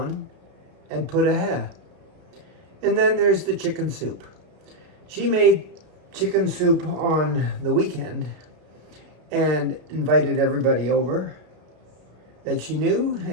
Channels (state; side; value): late; left; 32 ms